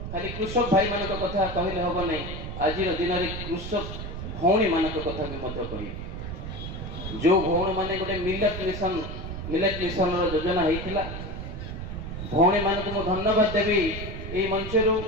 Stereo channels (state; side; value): noise; right; rumble, 7 dB below the sound